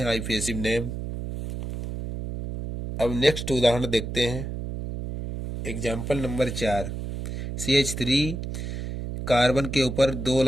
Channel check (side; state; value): right; noise; hum, 6 dB below the sound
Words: आईपीएसिव नेम। अब नेक्स्ट उदाहरण देखते हैं। Example number 4। CH3 कार्बन के ऊपर 2